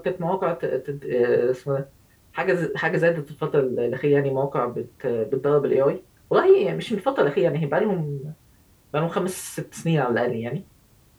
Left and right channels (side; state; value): both; identical; correlation 1.00